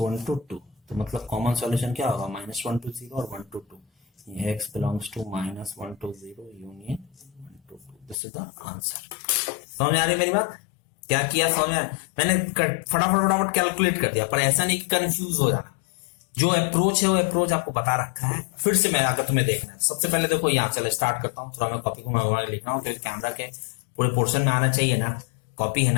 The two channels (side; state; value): right; drops out; at 8.2 s